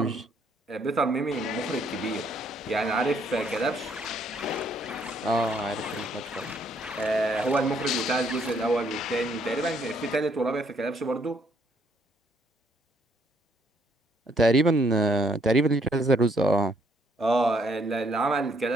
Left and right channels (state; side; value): normal; both; correlation 0.68